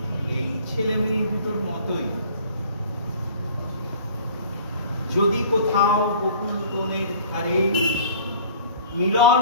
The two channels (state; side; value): inverted; both; correlation -0.49